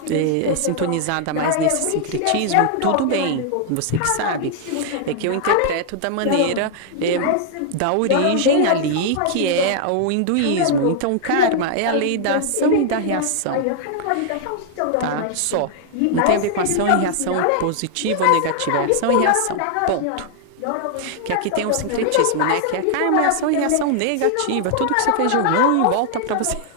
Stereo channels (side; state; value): both; different; correlation 0.00